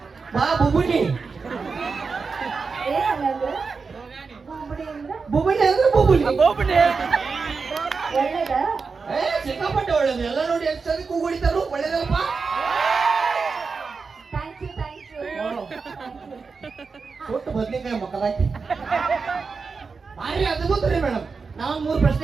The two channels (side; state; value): left; quieter; 4.8 dB